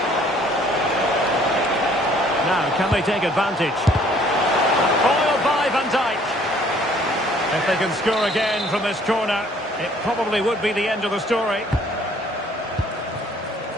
Now, can they take advantage? Foiled by Van Dijk. If they can score again from this corner, it probably would be the end of the story.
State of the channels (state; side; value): normal; both; correlation 0.59